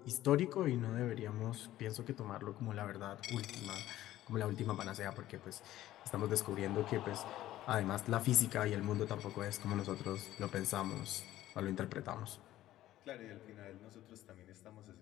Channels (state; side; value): quieter; right; 14.2 dB